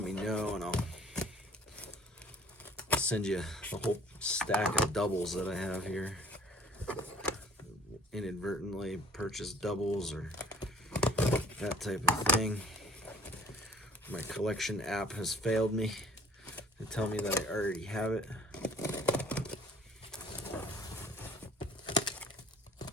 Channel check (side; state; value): both; normal; correlation 0.54